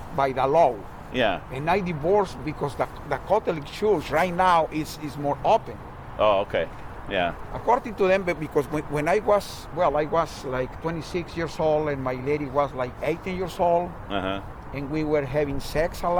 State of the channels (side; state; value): both; identical; correlation 1.00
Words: by the law. Yeah. And I divorced because the Catholic Church right now is more open. Oh, okay. Yeah. According to them, because when I was like 26 years old and my lady was like 18 years old, and we were having sex a